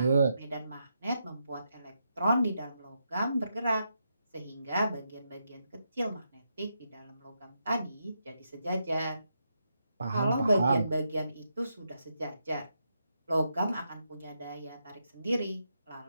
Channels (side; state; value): both; inverted; correlation -0.83